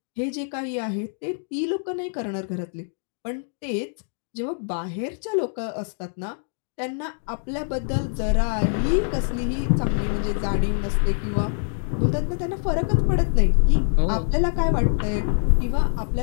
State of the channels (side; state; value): right; silent; digital silence